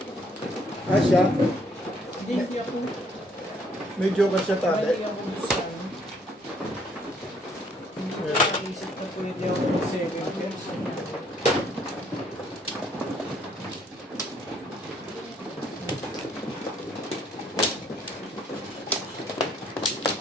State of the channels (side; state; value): both; normal; correlation 0.65